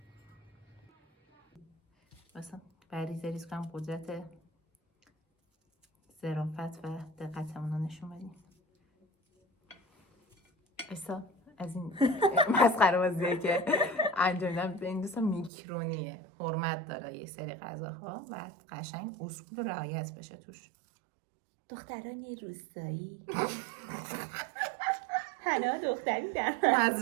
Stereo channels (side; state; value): left; drops out; at 15.5 s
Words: مثلا بریز ریز کنم قدرت ظرافت و دقتمون رو نشون بدیم. ایسا از این مسخره بازیه که انجام میدم به این دوستان میکرونیه، حرمت داره یک سری غذاها و قشنگ اصول رعایت بشه توش. دختران روستایی حنا دختری در